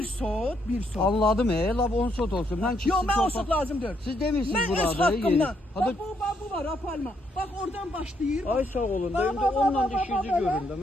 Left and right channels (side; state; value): both; normal; correlation 0.74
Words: sot. Anladım lab 10 sot olsun. Ben Yox, mən o sot lazım deyil. Siz demişsiniz Mən burada öz haqqımdan. yeri. Bax bu var, apalma. Bax oradan başlayır. Ay sağ olun. Bax, Benim de bax, onunla bax, bax, işinizi bax, görün de.